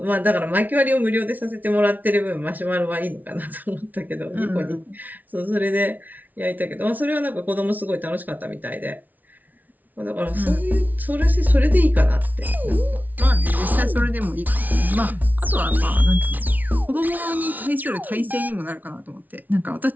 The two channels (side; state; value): left; late; 0.078 ms